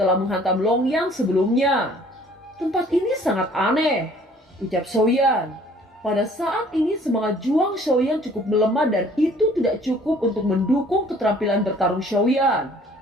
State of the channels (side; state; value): both; normal; correlation 0.55